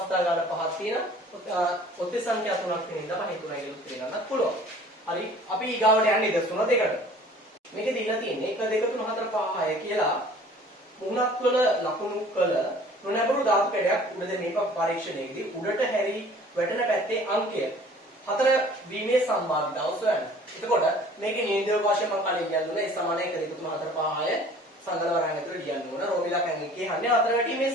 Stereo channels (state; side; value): normal; both; correlation 0.50